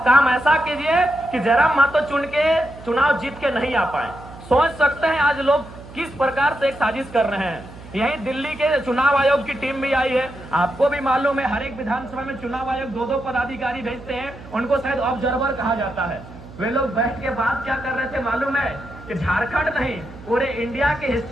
काम ऐसा कीजिए कि जयराम महतो चुनाव जीत के नहीं आ पाए। सोच सकते हैं आज लोग किस प्रकार से एक साजिश कर रहे हैं। यही दिल्ली के चुनाव आयोग की टीम भी आई है। आपको भी मालूम है, हर एक विधानसभा में चुनाव आयोग 2-2 पदाधिकारी भेजते हैं, उनको शायद ऑब्जर्वर कहा जाता है। वे लोग बैठ के बात क्या कर रहे थे मालूम है? कि झारखंड नहीं, पूरे इंडिया की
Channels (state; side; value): noise; right; hum, 17 dB below the sound